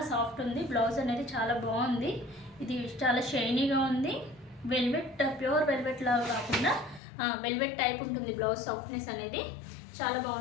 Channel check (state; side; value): drops out; right; at 7.0 s